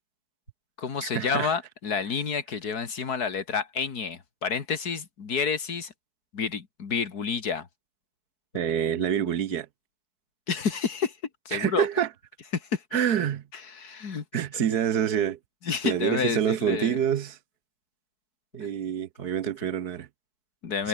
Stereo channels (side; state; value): right; late; 4.7 ms